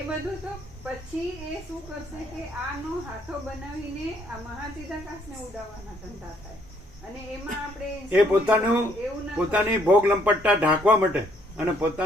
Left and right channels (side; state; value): both; normal; correlation 0.67